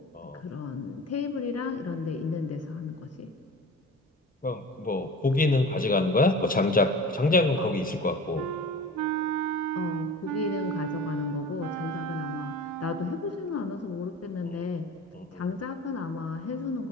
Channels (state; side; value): normal; both; correlation 0.37